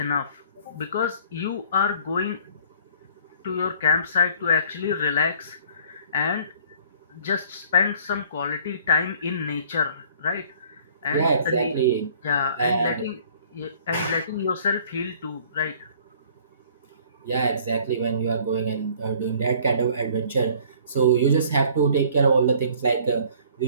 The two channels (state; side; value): inverted; both; correlation -0.54